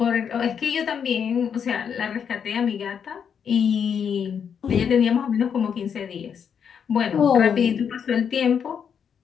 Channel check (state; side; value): quieter; right; 7.4 dB